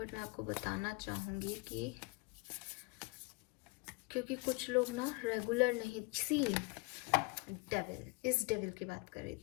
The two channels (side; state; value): right; quieter; 28.2 dB